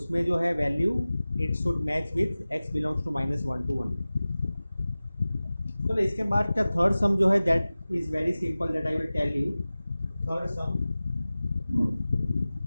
जो है value it should match with x belongs to -1 to 1। तो इसके बाद का थर्ड सम जो है that is very simple, that I will tell you. Third sum,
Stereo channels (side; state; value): both; inverted; correlation -0.97